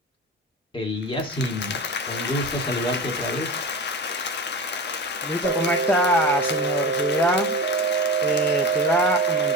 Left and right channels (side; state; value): both; normal; correlation 0.28